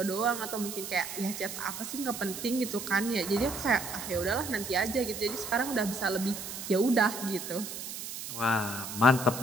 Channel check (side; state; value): right; noise; hiss, 8 dB below the sound